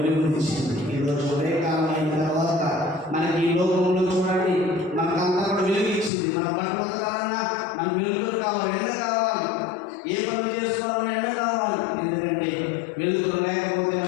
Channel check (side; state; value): right; drops out; at 6.1 s